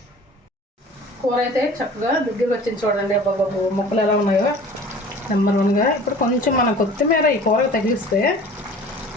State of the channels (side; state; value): both; normal; correlation 0.45